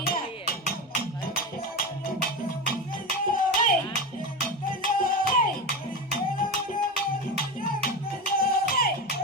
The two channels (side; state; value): both; normal; correlation 0.21